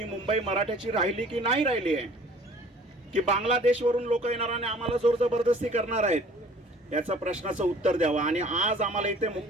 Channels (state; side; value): normal; both; correlation 0.51